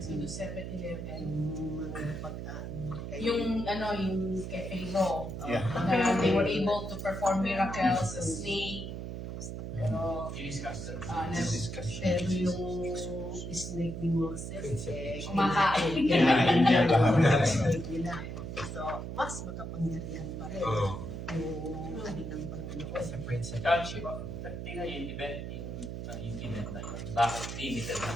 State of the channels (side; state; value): right; noise; hum, 6 dB below the sound